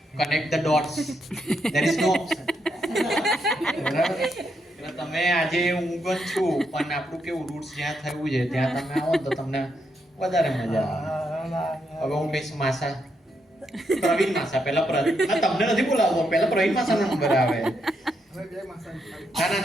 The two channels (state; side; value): normal; both; correlation 0.80